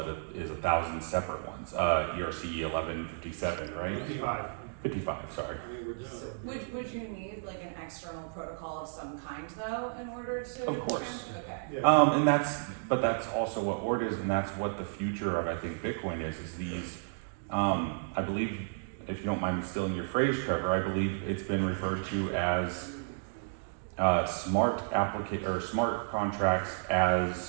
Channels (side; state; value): left; silent; digital silence